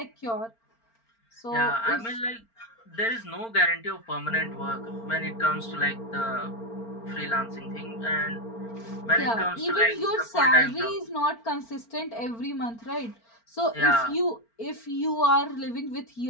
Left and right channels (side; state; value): right; late; 4.4 ms